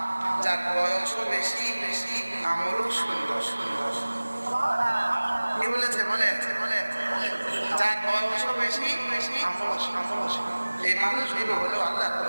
যার বয়সও বেশি আমলও সুন্দর। কি বলেছে? যার বয়সও বেশি আমলও সুন্দর। এই মানুষগুলো হলো আল্লাহ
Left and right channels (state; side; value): inverted; both; correlation -1.00